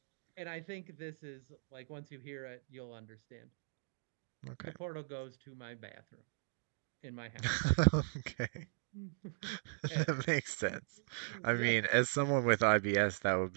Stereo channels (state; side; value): silent; left; digital silence